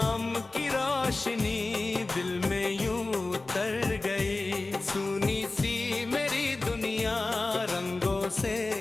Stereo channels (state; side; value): quieter; right; 3.2 dB